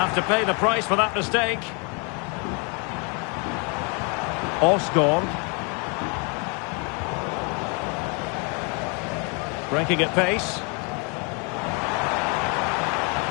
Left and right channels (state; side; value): quieter; right; 34.5 dB